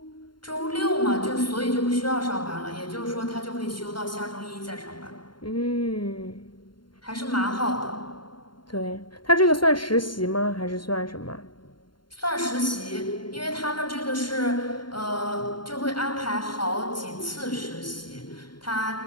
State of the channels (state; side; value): late; right; 0.72 ms